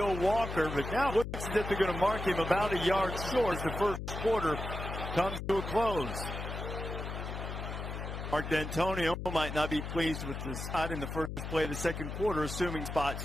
Walker, but now it looks as if they're going to mark him about a yard short as the first quarter comes to a close. Mark D'Antonio might not be pleased with the spot in the first play of the second quarter, assuming spot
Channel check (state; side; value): noise; left; hum, 6 dB below the sound